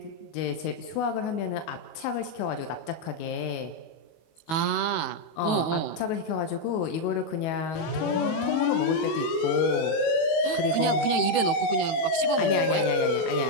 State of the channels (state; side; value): late; right; 18 ms